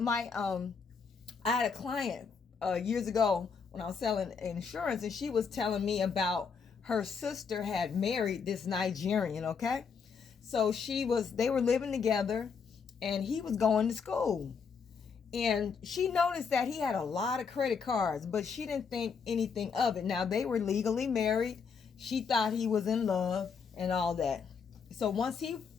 had a client years ago when I was selling insurance, and she was telling me about her sister had married this Nigerian, okay? So they were living together, and he was going to school. And she noticed that he had a lot of credit cards, but she didn't think anything of it. Now, they were legally married. She thought he was in love and all that. So once he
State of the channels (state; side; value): quieter; right; 5.8 dB